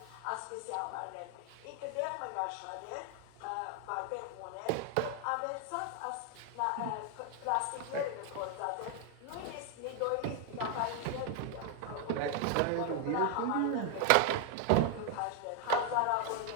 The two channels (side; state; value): both; different; correlation 0.00